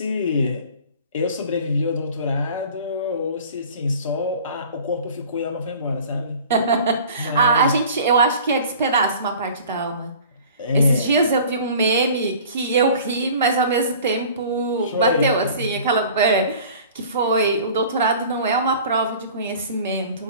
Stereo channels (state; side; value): inverted; both; correlation -0.45